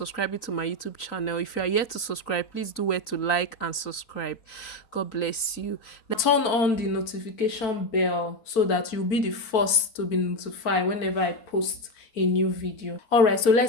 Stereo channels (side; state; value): right; late; 4.5 ms